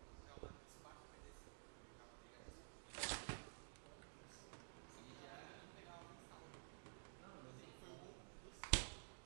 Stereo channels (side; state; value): left; silent; digital silence